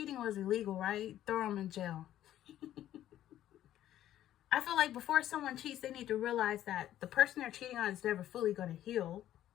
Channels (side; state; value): right; quieter; 12.4 dB